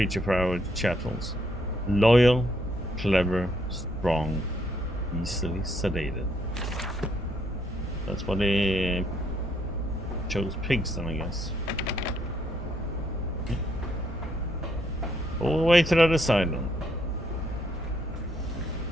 for our chattels. Loyal, clever, strong, easily sedated. That's why they chose pigs then, I guess. All the way to the other side then.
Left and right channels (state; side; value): normal; both; correlation 0.72